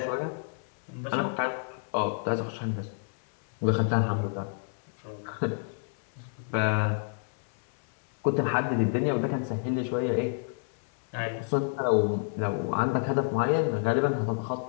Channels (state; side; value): silent; right; digital silence